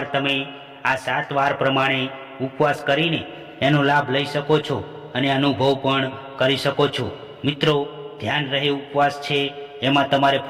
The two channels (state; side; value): identical; both; correlation 1.00